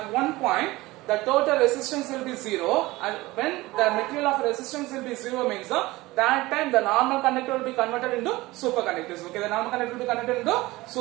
one point, the total resistance will be 0, and when the material of resistance will be 0 means that time the normal conductor will be converted into superconductors. Okay, the normal conductor will be converted into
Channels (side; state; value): left; quieter; 19.8 dB